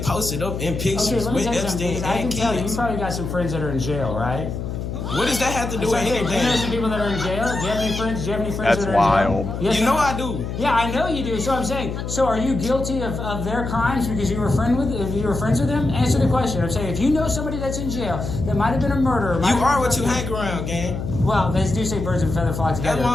up in pictures with Epstein I can and tell kids. you probably got some friends that are in jail, right? What does that have to do with anything? Do you know some people that are in jail? Do you have any friends? That's that are in jail? wild. Yes, you know I do. Yeah, I know you do. So I'm saying, so are you guilty of their crimes because you were friends with them? Answer the question. I'm saying, if you know somebody that's in jail that might have been a murderer, you are what you hang around, gang. Well, they do say birds of a feather flock together. That's what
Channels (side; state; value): left; noise; hum, 5 dB below the sound